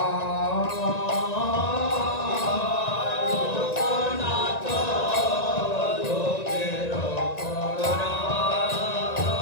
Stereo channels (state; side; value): late; right; 1.9 ms